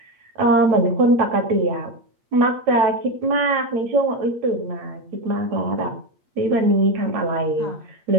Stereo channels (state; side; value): late; left; 8.6 ms